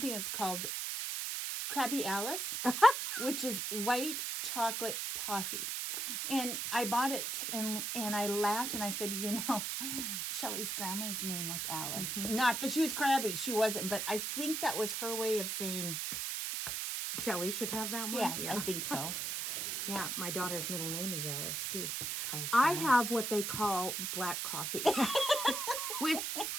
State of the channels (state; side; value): noise; right; hiss, 2 dB below the sound